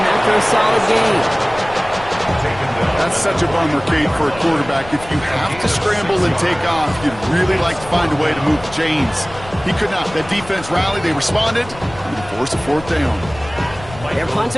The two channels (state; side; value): noise; left; rumble, 17 dB below the sound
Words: after a solid gain. That's such a bummer, Kate, for a quarterback. If you have to scramble and take off, you'd really like to find a way to move the chains. He could not. That defense rallied. They responded. And they forced a fourth down. Their